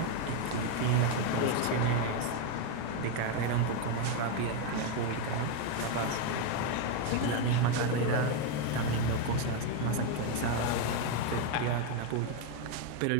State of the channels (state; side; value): different; both; correlation 0.02